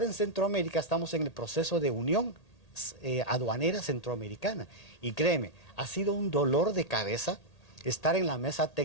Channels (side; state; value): right; late; 1.8 ms